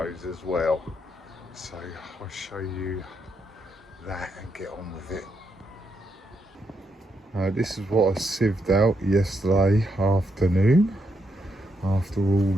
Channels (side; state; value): both; normal; correlation 0.79